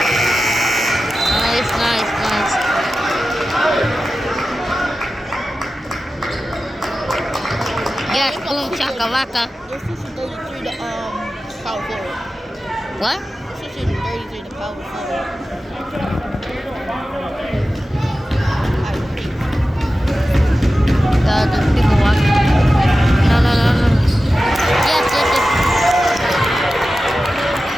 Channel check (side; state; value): both; normal; correlation 0.94